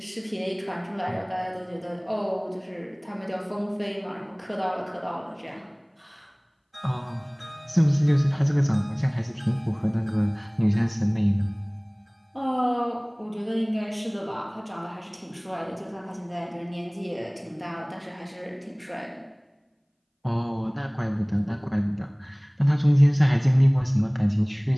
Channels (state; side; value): identical; both; correlation 1.00